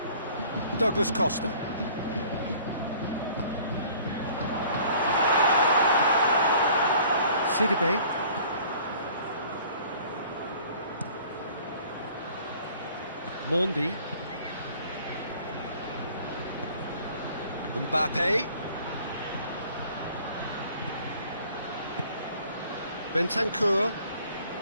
Douglas Costa. Sidibe. Mondi. Mbappe. Bentancur.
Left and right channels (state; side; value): inverted; both; correlation -0.52